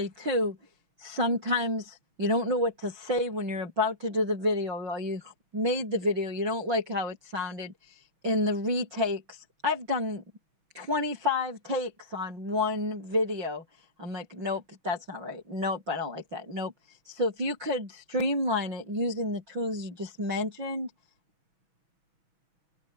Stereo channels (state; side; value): late; left; 6.2 ms